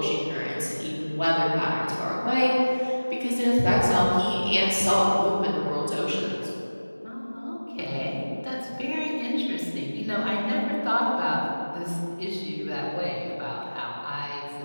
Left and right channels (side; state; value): both; inverted; correlation -1.00